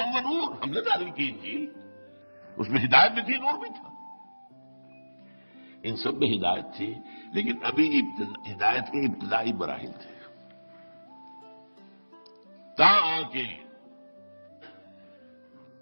ونور، ہم نے نازل کی انجیل، اس میں ہدایت بھی تھی، نور بھی تھا. ان سب میں ہدایت تھی، لیکن ابھی ہدایت کے ابتدائی مراحل تھے، تاکہ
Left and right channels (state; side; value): inverted; both; correlation -1.00